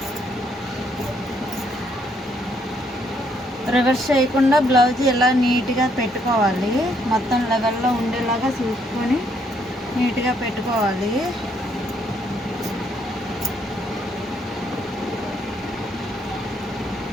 రివర్స్ చేయకుండా బ్లౌజ్ ఇలా నీట్గా పెట్టుకోవాలి. మొత్తం లెవెల్లో ఉండేలాగా చూసుకొని నీట్గా పెట్టుకోవాలి.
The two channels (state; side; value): normal; both; correlation 0.71